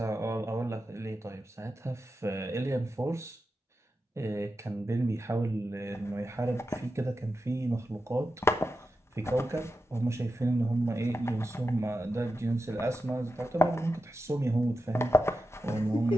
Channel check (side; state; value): both; normal; correlation 0.90